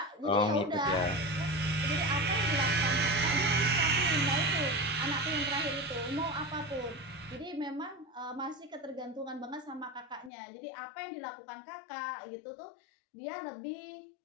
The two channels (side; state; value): right; drops out; at 10.3 s